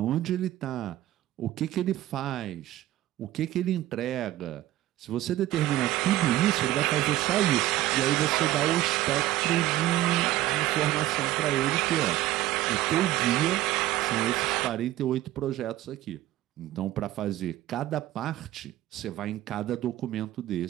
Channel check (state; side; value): quieter; left; 15.2 dB